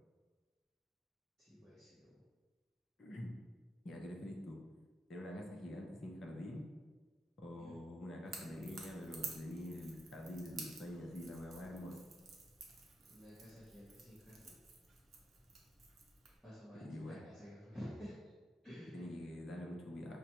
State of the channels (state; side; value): normal; both; correlation 0.84